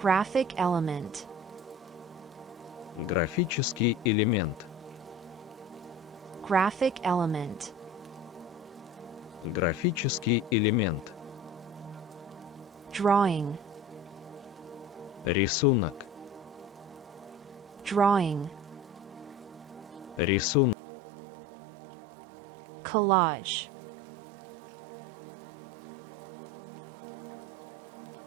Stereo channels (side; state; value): left; drops out; at 20.8 s